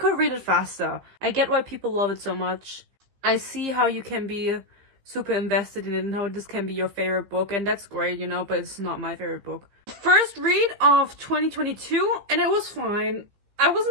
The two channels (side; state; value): left; late; 15 ms